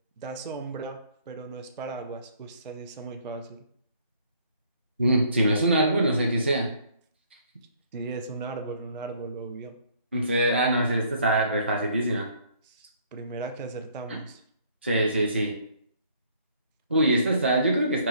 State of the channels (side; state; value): both; inverted; correlation -0.61